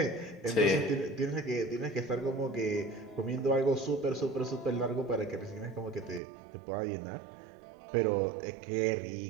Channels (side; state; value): left; drops out; at 6.2 s